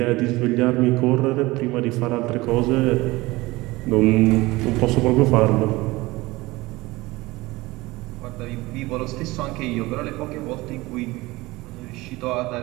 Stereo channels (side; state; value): left; quieter; 20.7 dB